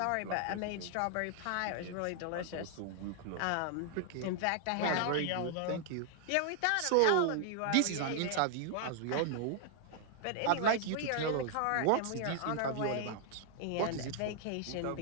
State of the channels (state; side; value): different; both; correlation 0.00